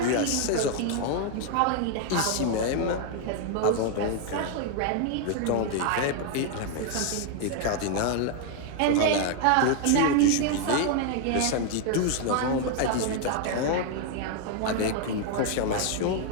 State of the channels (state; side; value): different; both; correlation 0.00